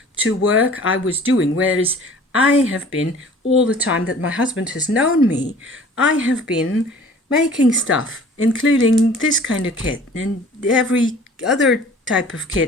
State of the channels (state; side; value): normal; both; correlation 0.48